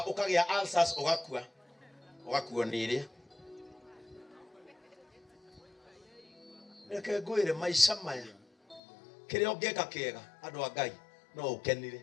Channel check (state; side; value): drops out; right; at 8.8 s